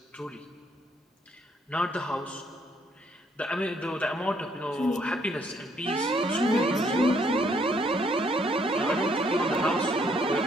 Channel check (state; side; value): normal; both; correlation 0.69